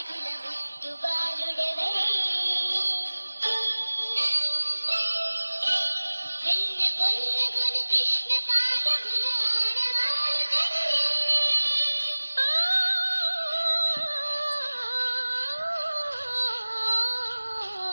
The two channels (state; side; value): inverted; both; correlation -1.00